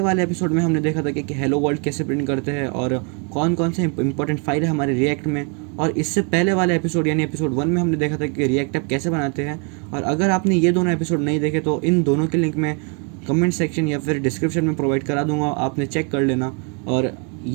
वाले एपिसोड में हमने देखा था कि हेलो वर्ल्ड कैसे प्रिंट करते हैं और कौन कौन से इंपॉर्टेंट फाइल है हमारे रिएक्ट में। और इससे पहले वाले एपिसोड यानी एपिसोड 1 में हमने देखा था कि रिएक्ट ऐप कैसे बनाते हैं। और अगर आपने ये दोनों एपिसोड नहीं देखे तो इन दोनों के लिंक मैं कमेंट सेक्शन या फिर डिस्क्रिप्शन में प्रोवाइड करा दूंगा, आपने चेक कर लेना। और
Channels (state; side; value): quieter; left; 37.6 dB